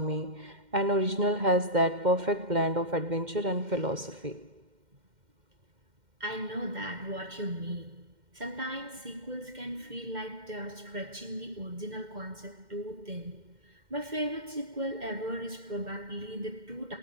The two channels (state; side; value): late; left; 2.1 ms